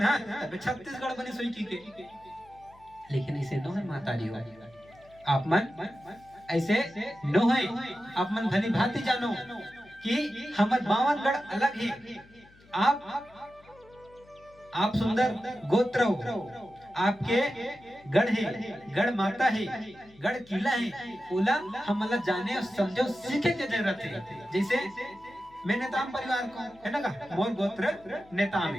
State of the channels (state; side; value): noise; left; hum, 27 dB below the sound